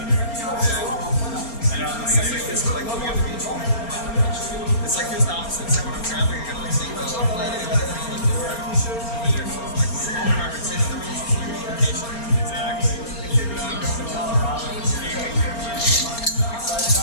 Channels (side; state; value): right; late; 4.3 ms